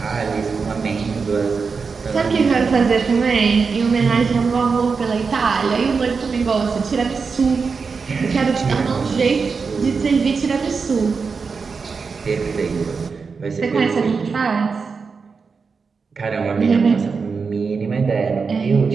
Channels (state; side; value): quieter; left; 5.1 dB